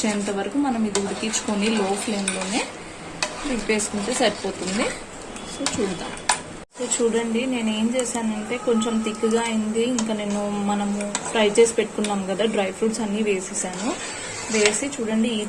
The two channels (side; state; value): both; identical; correlation 1.00